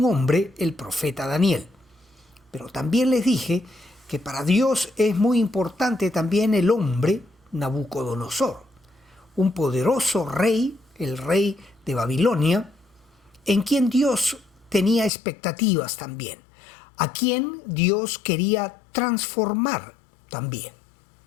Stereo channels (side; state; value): right; drops out; at 15.1 s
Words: hombre, el profeta Daniel. Pero también les dije que para Dios es muy importante también el hombre Nabucodonosor, un poderoso rey, el rey de Babilonia, en quien Dios tenía expectativas también, a quien Dios quería transformar también.